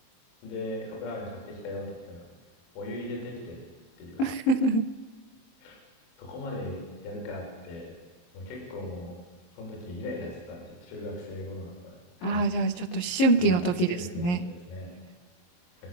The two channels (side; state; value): right; late; 23 ms